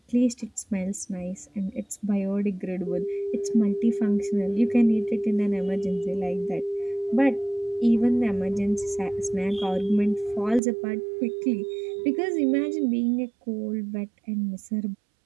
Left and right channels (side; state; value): left; drops out; at 10.6 s